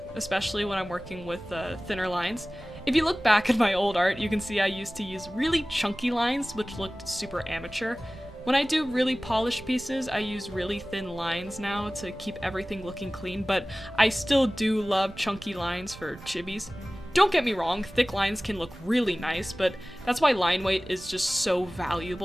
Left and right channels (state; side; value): noise; right; rumble, 19 dB below the sound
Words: especially when I'm working with thinner lines. If you look back at my old art, you can see I used to use really chunky lines, which looked super amateur. When I do really polished pieces, I use really thin lines now to keep everything looking clean, but I still do love chunky lines for chibis. Don't get me wrong, thick lines can look really nice, but that's why line weight is just so